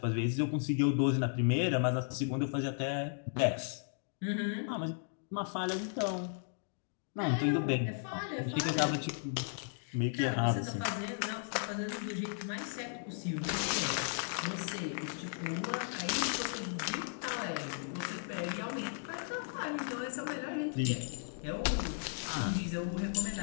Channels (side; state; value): right; silent; digital silence